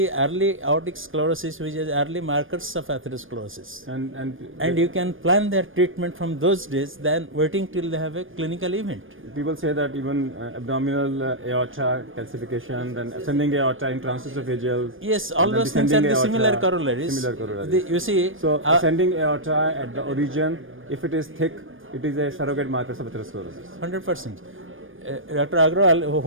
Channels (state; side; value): late; left; 0.59 ms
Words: early aortic sclerosis, which is early markers of atherosclerosis. And you can plan their treatment from those days than waiting till they have a clinical event. People say that even abdominal aorta calcification, then ascending aorta in transesophageal. Yes, all and then those things are descending the similar aorta, corollaries. Similar corollaries. You see, So ascending aorta at the origin, if it is thick, it is a surrogate marker of atherosclerosis. 100%. Dr. Agrawal,